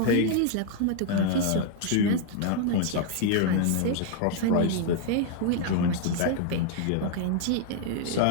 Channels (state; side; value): different; both; correlation 0.00